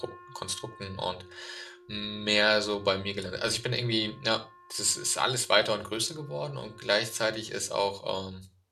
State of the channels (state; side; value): identical; both; correlation 1.00